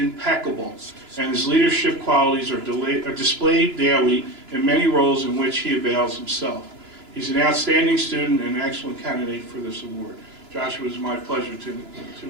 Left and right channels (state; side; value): late; left; 3.0 ms